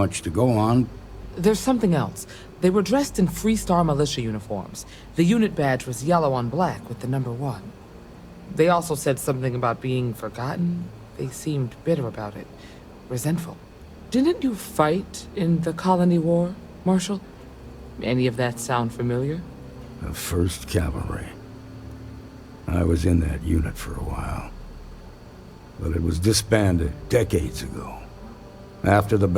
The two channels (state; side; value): identical; both; correlation 1.00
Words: to go on. There's something else. They were dressed in Freestar militia uniforms. The unit badge was yellow on black with the number 1. They also said something about being forgotten. They seemed bitter about it, resentful. Didn't you fight in the Colony War, Marshal? Any of that sound familiar? The 1st Cavalry. I was in that unit for a while. But it was disbanded decades ago. After the